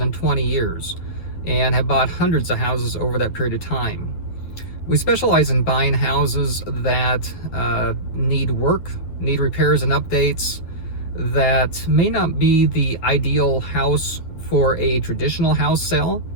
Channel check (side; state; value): right; late; 10 ms